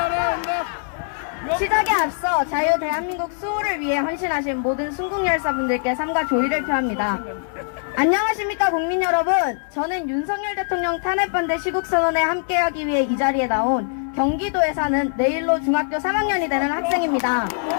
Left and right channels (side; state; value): right; silent; digital silence